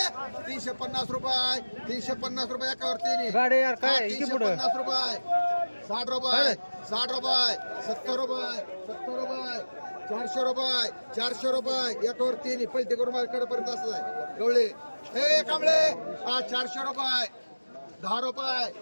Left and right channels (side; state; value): both; inverted; correlation -1.00